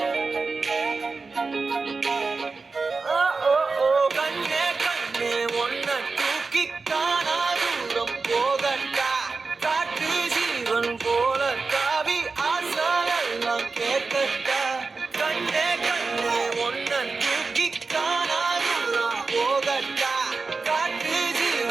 கண்ணே கண்ணே உன்னை தூக்கி காணாதூரம் போகட்டா காட்டு ஜீவன் போல தாவி ஆசாயல் கேட்கட்டா கண்ணே கண்ணே உன்னை தூக்கி காணாதூரம் போகட்டா காட்டு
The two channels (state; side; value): quieter; left; 4.2 dB